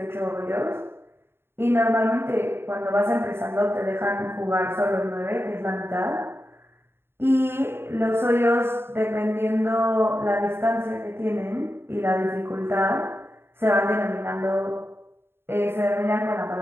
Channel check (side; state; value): left; late; 0.11 ms